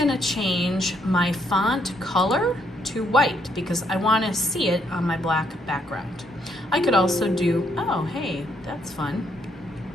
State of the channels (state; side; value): normal; both; correlation 0.73